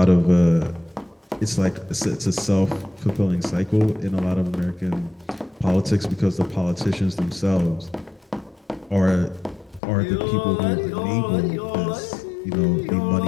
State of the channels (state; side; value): drops out; right; at 9.8 s